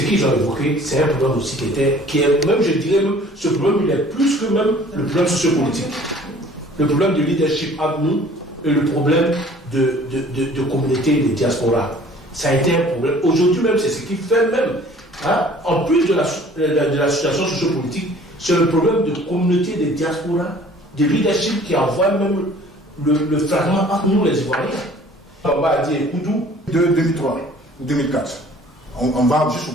qu'ils ont évoqué, c'est un problème aussi qui est même, je dirais, même, ce problème, il est plus que même le problème sociopolitique. Le problème de leadership entre nous et le problème de communauté, de diaspora. Ça a été un problème. Aujourd'hui même, c'est ce qui fait même, en plus de la situation sociopolitique, c'est le problème de communauté, de diaspora, de leadership qui envoie même le fragment entre nous les Ivoiriens. On va dire Koudou. De 2003 ou 2004, on va juste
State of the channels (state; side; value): normal; both; correlation 0.52